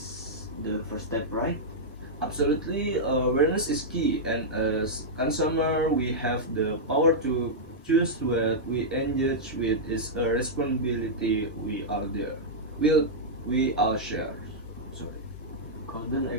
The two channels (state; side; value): normal; both; correlation -0.08